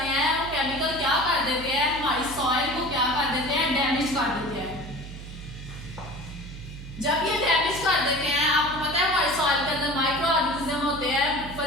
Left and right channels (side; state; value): right; noise; hum, 12 dB below the sound